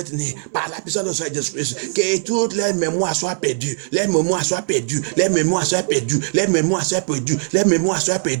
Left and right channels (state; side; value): silent; left; 64 dB below the other